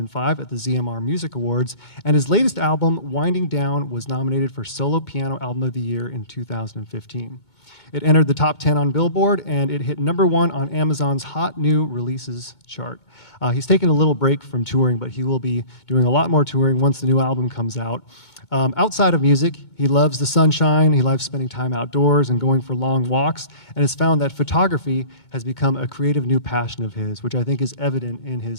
at the ZMR Music Awards, and his latest album, Winding Down, was nominated for Solo Piano Album of the Year in 2015. It entered the top 10 on Billboard, and it hit #1 on Amazon's Hot New Releases chart. He's taken a little break from touring, but he will be doing a lot more touring once the new album comes out. Outside of music, he loves the sunshine, he loves spending time outdoors and going for long walks, and has found that photography has become a creative new passion of his, which I think is evident in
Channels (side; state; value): right; late; 2.2 ms